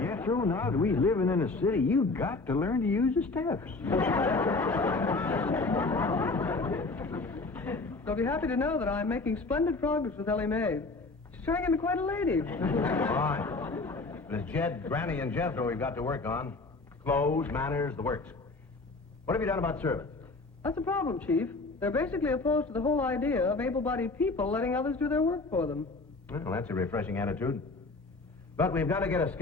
now that we're living in a city, you got to learn to use the steps. I'll be happy to know that I'm making splendid progress with Elly Mae. She's turning into quite a lady. Fine. But it's Jed, Granny, and Jethro we've got to work on. Clothes, manners, the works. What have you done about servants? That's the problem, Chief. They're basically opposed to the whole idea of able-bodied people letting others do their work for them. Well, that's a refreshing attitude. But we've got to get a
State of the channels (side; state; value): right; quieter; 3.5 dB